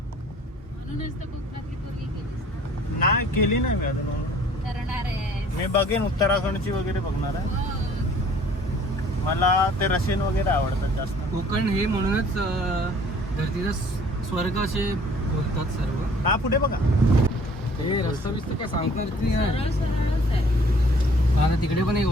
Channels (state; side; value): normal; both; correlation 0.54